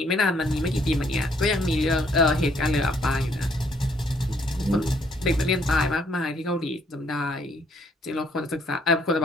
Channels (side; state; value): both; normal; correlation 0.67